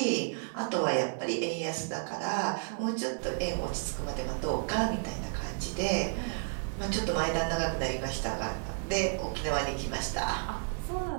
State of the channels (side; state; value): left; silent; digital silence